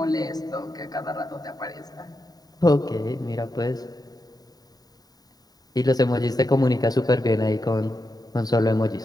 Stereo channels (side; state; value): right; late; 0.18 ms